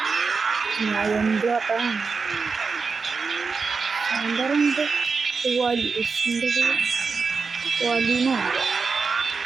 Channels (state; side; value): quieter; left; 4.8 dB